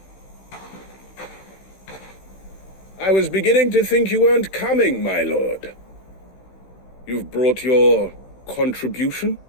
I was beginning to think you weren't coming, my lord. You've brought your contribution?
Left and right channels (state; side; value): late; right; 16 ms